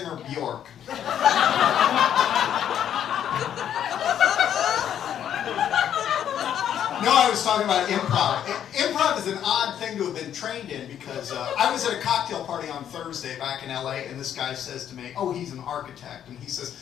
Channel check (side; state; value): right; quieter; 9.8 dB